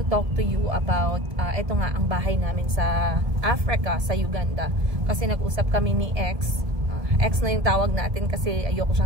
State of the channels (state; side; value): late; left; 1.7 ms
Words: talk to you about ito nga ang bahay namin sa Africa, sa Uganda. Kasi nag-usap kami ni X na yung tawag natin kasi ayoko